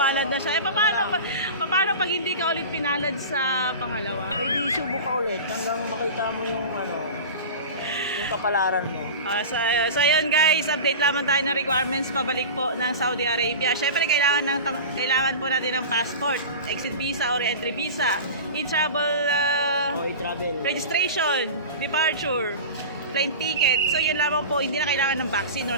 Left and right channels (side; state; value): both; inverted; correlation -0.31